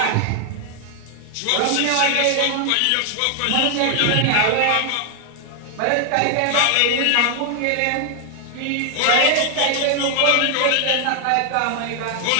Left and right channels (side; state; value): both; different; correlation 0.00